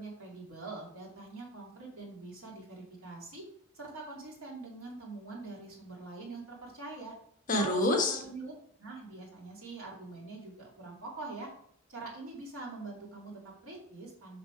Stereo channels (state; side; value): normal; both; correlation 0.24